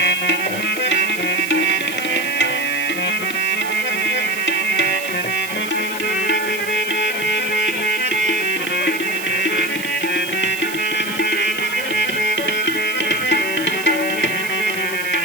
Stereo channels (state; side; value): noise; right; hiss, 11 dB below the sound